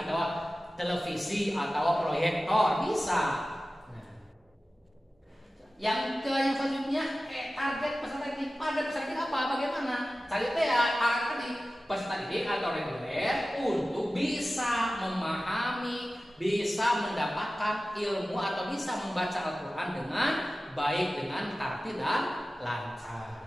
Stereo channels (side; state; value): both; normal; correlation 0.96